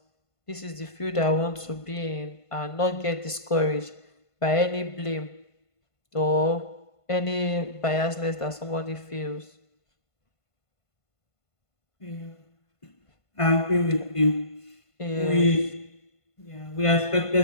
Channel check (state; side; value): late; right; 1.5 ms